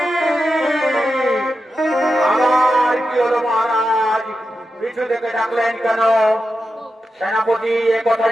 আমার কি হলো মহারাজ, পিছু থেকে ডাকলেন কেন? সেনাপতি, এ কথা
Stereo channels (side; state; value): both; normal; correlation 0.89